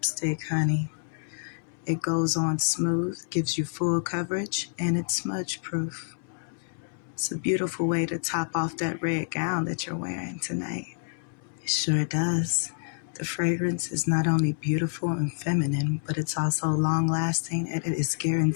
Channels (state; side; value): silent; right; 59 dB below the other